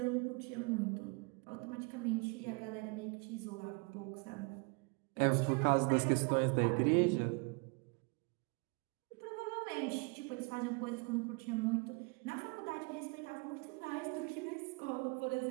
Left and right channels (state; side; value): quieter; left; 31.7 dB